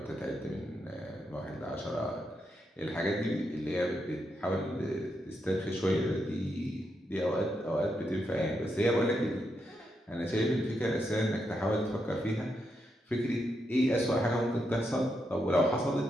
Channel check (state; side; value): normal; both; correlation 0.82